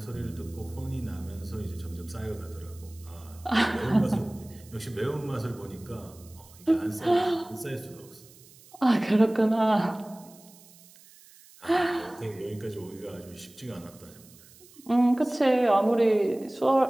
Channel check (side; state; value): right; noise; hiss, 24 dB below the sound